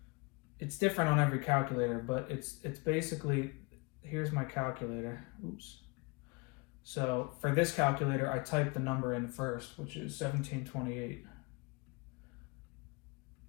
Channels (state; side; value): quieter; right; 28.4 dB